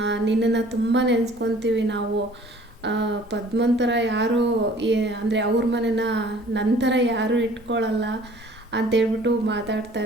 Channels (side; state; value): both; normal; correlation 0.52